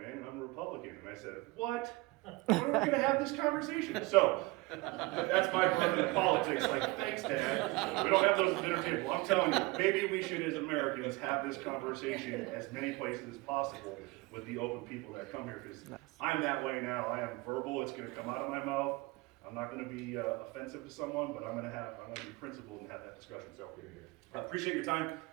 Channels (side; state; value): left; quieter; 23.2 dB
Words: and I'm a Republican. And I said, what? When are we going to have this conversation? So, that's my part of politics. Like, thanks, Dad. We don't have those at the dinner table. I'm telling you, maybe we should, as Americans, have this conversation as many places as possible with the open people that come here. Because I'm that way now. I am verbal. It's going to come out of my mouth. I'm not going to be offensive to someone, but I'm going to be principled and have that discussion. So, I appreciate your time.